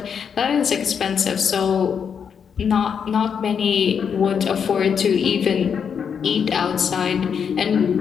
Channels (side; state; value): right; quieter; 7.1 dB